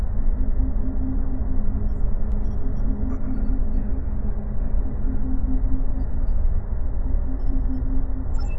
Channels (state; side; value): identical; both; correlation 1.00